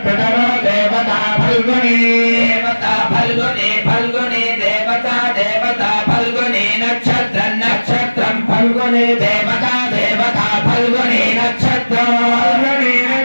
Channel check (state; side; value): inverted; both; correlation -1.00